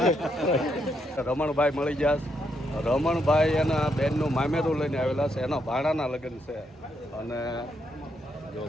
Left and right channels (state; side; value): normal; both; correlation 0.78